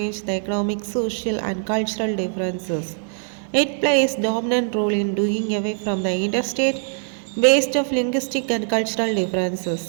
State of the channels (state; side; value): silent; left; 64 dB below the other